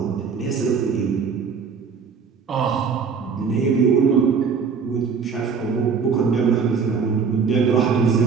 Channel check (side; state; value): left; quieter; 5.8 dB